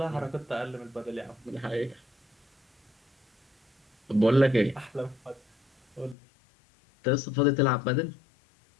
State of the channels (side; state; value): right; drops out; at 6.2 s